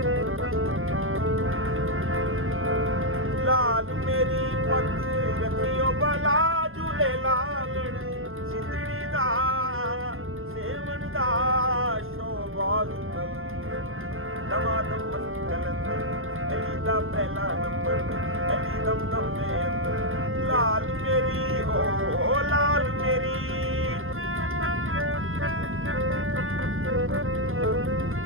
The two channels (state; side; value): late; left; 0.60 ms